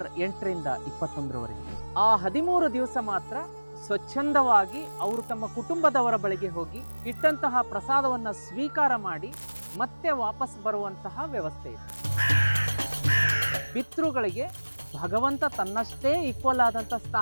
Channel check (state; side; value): inverted; both; correlation -1.00